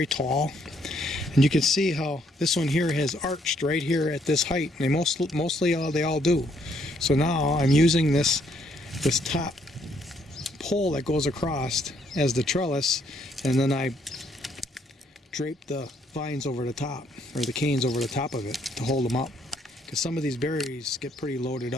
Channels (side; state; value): both; normal; correlation 0.69